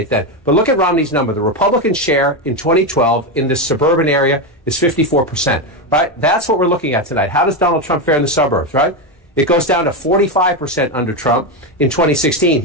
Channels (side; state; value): both; normal; correlation 0.11